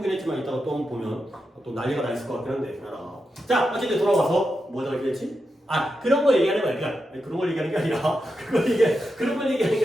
했지만 이따가 또 보면 또 난리가 나 있을 것 같긴 한데. 자 어쨌든 돌아와서 뭐가 얘기했지? 그런 걸 얘기하는 거야. 그러니까 그런 걸 얘기하는 게 아니라 그런 걸 얘기하는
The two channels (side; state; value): both; normal; correlation 0.88